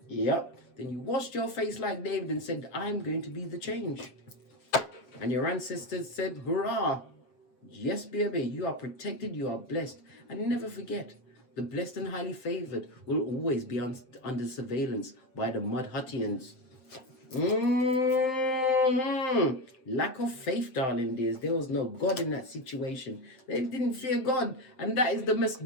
Yep. Then you washed your face like David and said, I'm going to be the change. And your ancestors said, hurrah. Yes, baby, you are protected, you are blessed. And never forget, the blessed and highly favored will always be under surveillance by the Mudhuttians. Lack of faith, darling dears. There was no God in that situation. They didn't fear God. And that is the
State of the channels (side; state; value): right; late; 7.8 ms